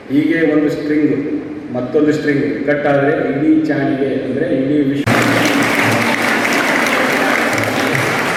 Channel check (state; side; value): identical; both; correlation 1.00